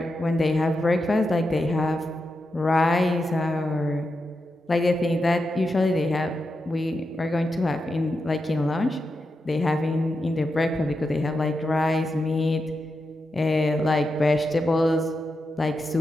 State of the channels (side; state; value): both; normal; correlation 0.87